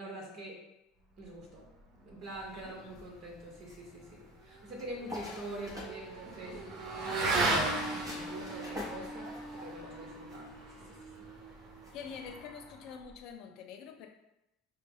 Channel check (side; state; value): both; normal; correlation 0.35